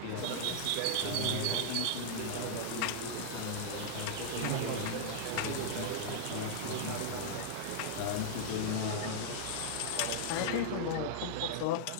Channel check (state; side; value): different; both; correlation -0.01